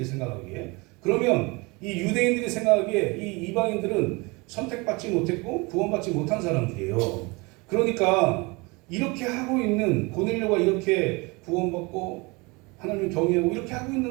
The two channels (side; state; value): left; quieter; 26.4 dB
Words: 생각하기에. 그러면 이 유대인들이 생각하기에 이 이방인들은 선택받지 못했고 구원받지 못한 사람들이에요. 그러니까 이렇게 하고 있는 고넬료가 이렇게 구원받고 하나님을 경외하고 이렇게 하고